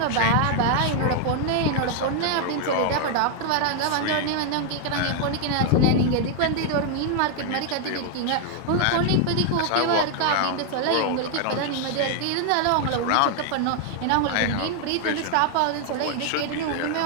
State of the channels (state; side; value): different; both; correlation 0.00